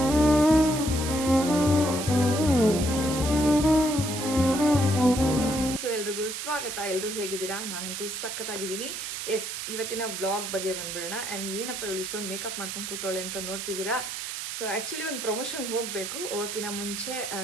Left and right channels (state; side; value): noise; right; hiss, 6 dB below the sound